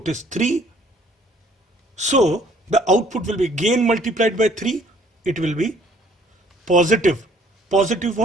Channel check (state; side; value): normal; both; correlation 0.59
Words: is 3. So the output will be gain multiplied by 3. It will be positive. Positive